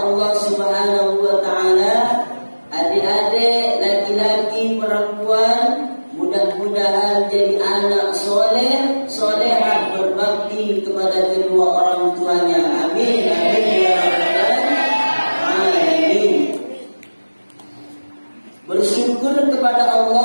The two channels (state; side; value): inverted; both; correlation -1.00